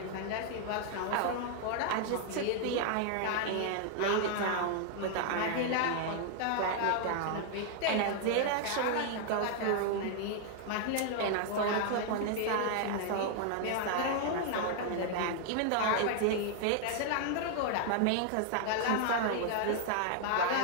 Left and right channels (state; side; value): different; both; correlation 0.00